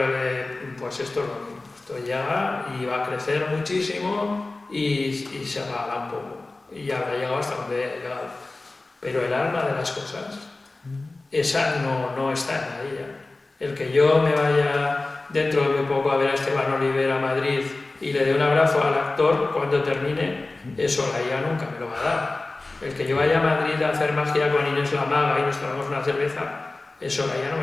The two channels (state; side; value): quieter; right; 3.2 dB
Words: pues esto es lo mismo. Esto llega y va a crecer muchísimo y se apagará un poco. Y ya habrá llegado hasta donde ha llegado. Pero el alma de las cosas, esa no está en la IA. El que yo me vaya dentro de muy poco a ver a Esteban Oliver a Madrid y le dé un abrazo al actor cuando termine, eso la IA nunca me lo va a dar. El que yo vaya a Madrid a hacer magia con Inés la Maga y nos tomamos una cerveza, eso la IA no